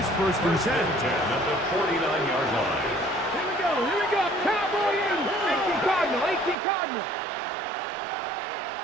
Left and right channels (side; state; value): left; drops out; at 6.6 s